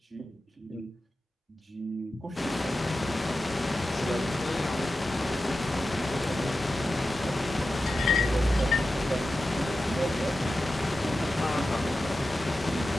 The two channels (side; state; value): both; normal; correlation 0.93